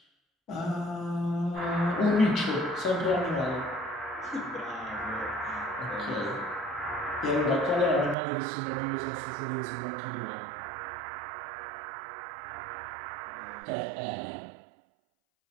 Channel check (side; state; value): left; drops out; at 8.2 s